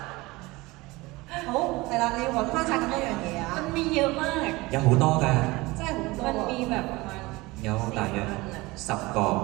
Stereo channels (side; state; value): left; quieter; 21.8 dB